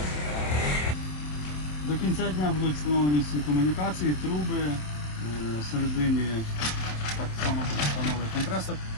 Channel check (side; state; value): right; late; 27 ms